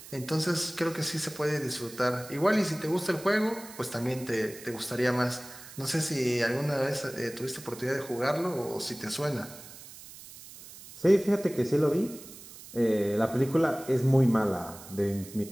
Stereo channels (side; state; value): right; noise; hiss, 17 dB below the sound